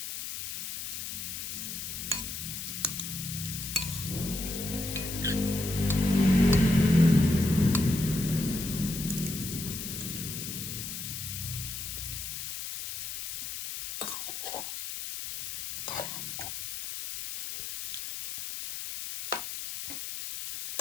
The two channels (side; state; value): left; noise; hiss, 6 dB below the sound